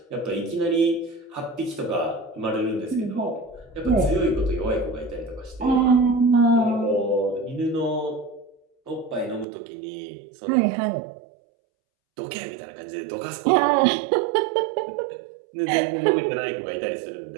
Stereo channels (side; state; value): left; drops out; at 9.5 s